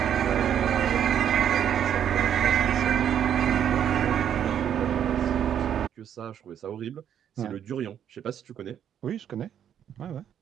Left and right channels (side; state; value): left; quieter; 9.3 dB